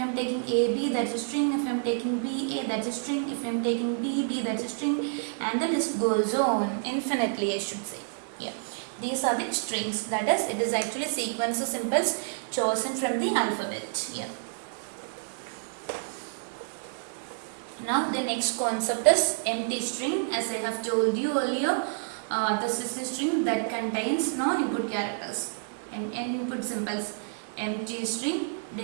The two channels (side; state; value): left; silent; digital silence